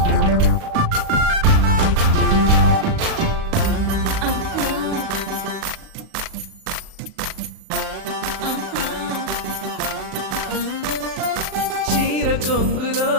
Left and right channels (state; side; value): late; left; 37 ms